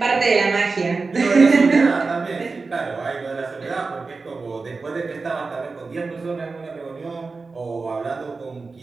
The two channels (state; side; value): quieter; left; 4.1 dB